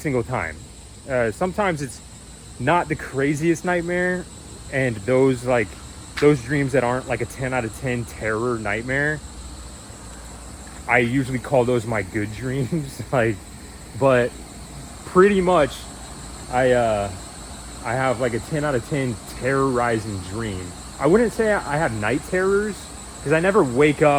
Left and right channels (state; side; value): identical; both; correlation 1.00